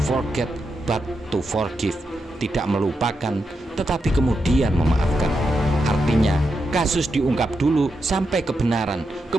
forget but to forgive, tidak melupakan tetapi kemudian memaafkan. Artinya kasus diungkap dulu sampai kebenaran,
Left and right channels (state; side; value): normal; both; correlation 0.85